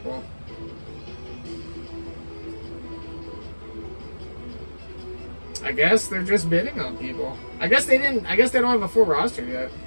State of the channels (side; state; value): both; inverted; correlation -1.00